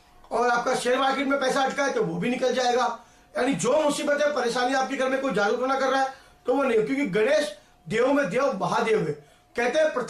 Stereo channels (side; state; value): both; identical; correlation 1.00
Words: और आपका शेयर मार्केट में पैसा अटका है तो वो भी निकल जाएगा। यानी जो मुसीबतें परेशानी आपके घर में कोई जागरूक ना कर रहा है तो वो नहीं, क्योंकि गणेश देव में देव महादेव है। कहते हैं